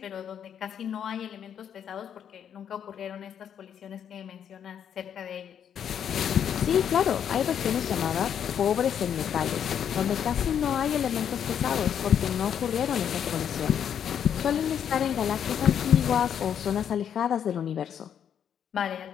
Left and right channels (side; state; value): right; quieter; 8.7 dB